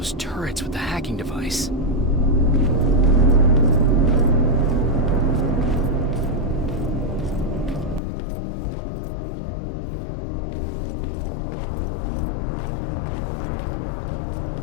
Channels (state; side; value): drops out; right; at 8.0 s